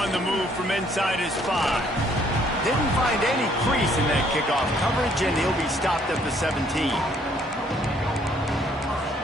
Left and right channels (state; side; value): normal; both; correlation 0.64